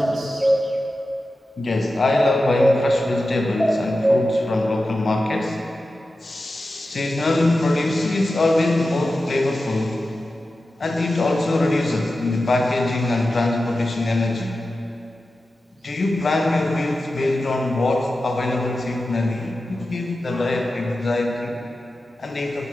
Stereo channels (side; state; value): both; normal; correlation 0.93